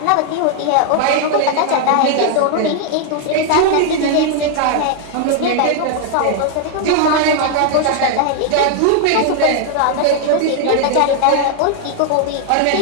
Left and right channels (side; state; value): both; different; correlation 0.00